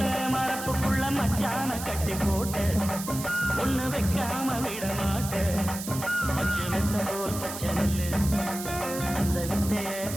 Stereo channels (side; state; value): right; noise; hiss, 9 dB below the sound